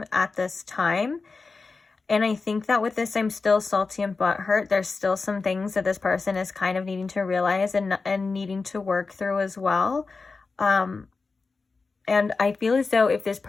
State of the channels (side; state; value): right; quieter; 4.2 dB